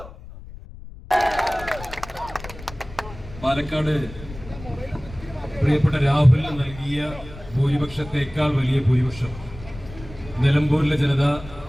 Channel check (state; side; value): noise; left; rumble, 15 dB below the sound